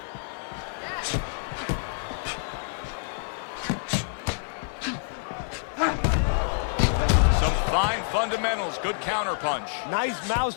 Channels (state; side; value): silent; right; 60 dB below the other